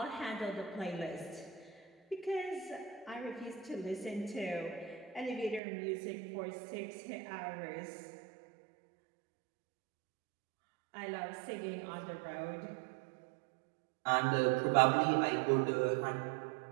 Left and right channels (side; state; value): left; drops out; at 5.6 s